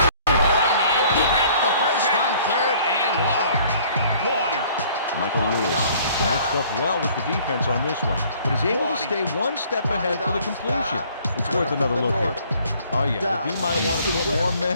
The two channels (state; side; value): inverted; both; correlation -0.56